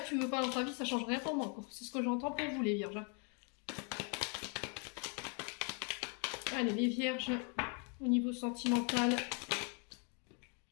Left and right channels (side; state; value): right; quieter; 37.9 dB